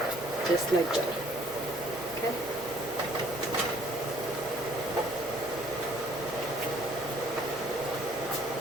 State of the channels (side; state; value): both; normal; correlation 0.59